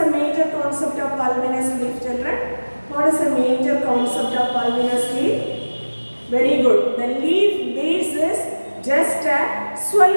major concept of pulvinous leaf, children? What is the major concept of pulvinous leaf? Very good. The leaf base is just a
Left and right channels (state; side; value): inverted; both; correlation -1.00